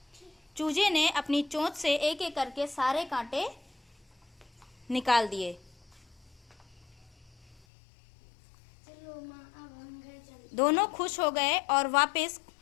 चूजे ने अपनी चोंच से एक एक करके सारे कांटे निकाल दिए। चलो माँ, अब हम घर चलते। दोनों खुश हो गए और वापस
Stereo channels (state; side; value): drops out; right; at 7.6 s